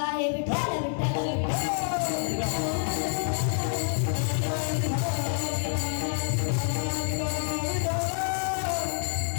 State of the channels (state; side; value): silent; right; 60 dB below the other